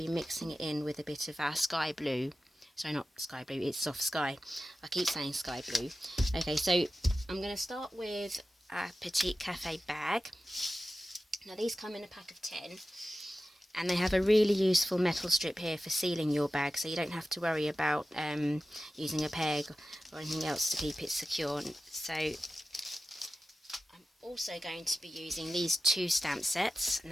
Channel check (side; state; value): both; normal; correlation 0.94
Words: mixing it in with a bit of our sky blue. Sorry, not sky blue, it's soft sky. I keep saying sky blue. Okay, so I'm going to start with a Petite Cafe bag. Now these come in a pack of 10, and they have a really useful metal strip here for sealing your bag, so you don't have to worry about using a peg or anything else to keep it secure. So I'm also going to be using these two stamp sets.